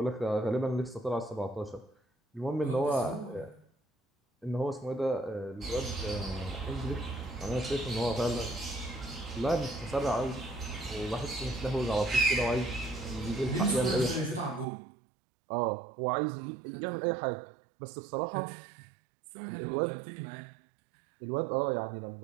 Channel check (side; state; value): left; drops out; at 14.7 s